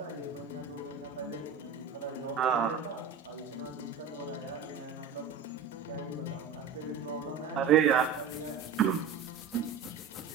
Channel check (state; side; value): quieter; left; 6.3 dB